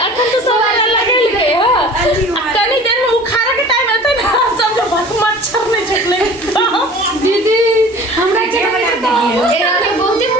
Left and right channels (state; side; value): normal; both; correlation 0.43